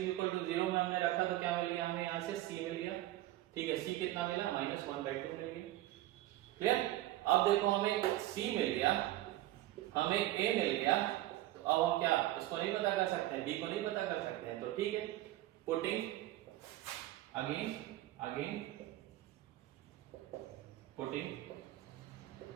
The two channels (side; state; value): left; quieter; 15.6 dB